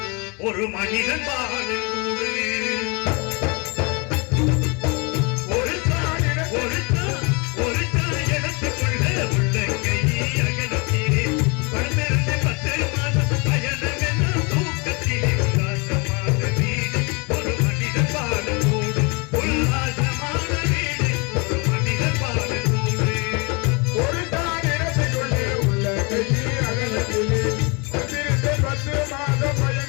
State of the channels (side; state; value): right; quieter; 30.5 dB